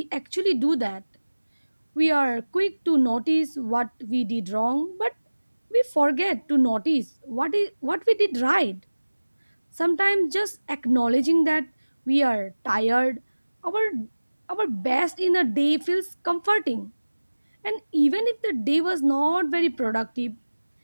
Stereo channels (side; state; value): both; inverted; correlation -1.00